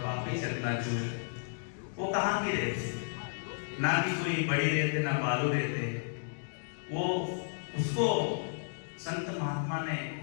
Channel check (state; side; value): silent; right; digital silence